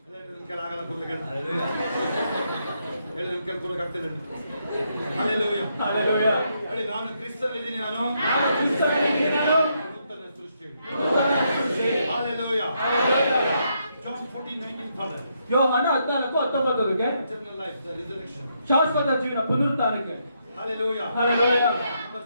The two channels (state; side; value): inverted; both; correlation -0.78